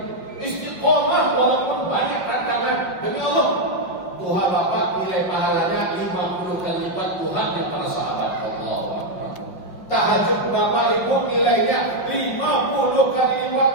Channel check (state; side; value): late; right; 5.7 ms